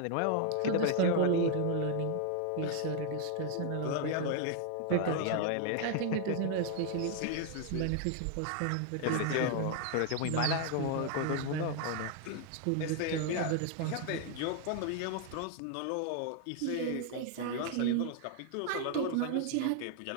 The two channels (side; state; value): both; different; correlation 0.00